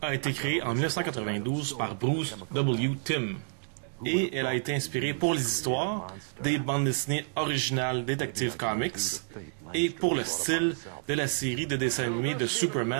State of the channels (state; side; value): silent; left; digital silence